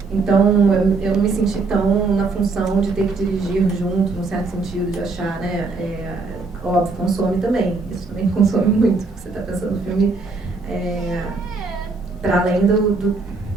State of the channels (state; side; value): quieter; left; 3.9 dB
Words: Então, eu não me senti tão na função de ter que dirigir junto, num certo sentido, de achar, né? Óbvio, consome também. Isso também consome muito, porque você está pensando no filme para além